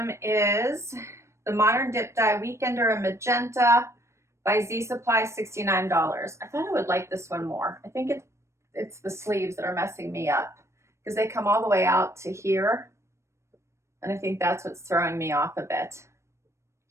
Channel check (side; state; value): left; late; 0.13 ms